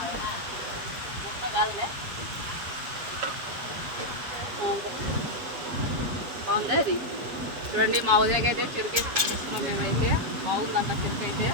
కాదులే, బాగుంది అది. చూడండి, మా ఉదయకైతే చెరుకు అయితే తీసుకున్నాం మేమైతే. బాగుందంట చెరుకు అయితే.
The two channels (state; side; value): late; left; 7.7 ms